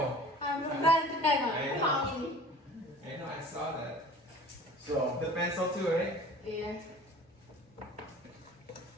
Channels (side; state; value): both; normal; correlation 0.44